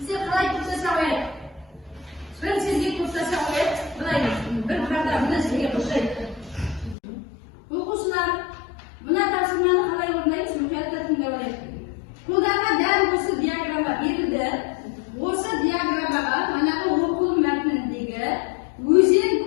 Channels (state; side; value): drops out; right; at 7.0 s